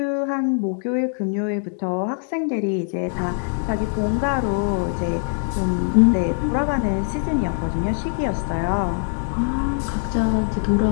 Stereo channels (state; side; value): silent; right; 63 dB below the other